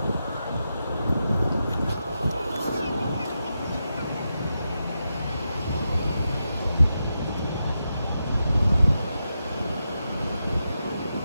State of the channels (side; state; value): both; inverted; correlation -0.87